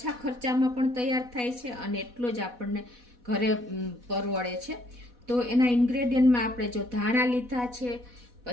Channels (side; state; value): left; late; 4.1 ms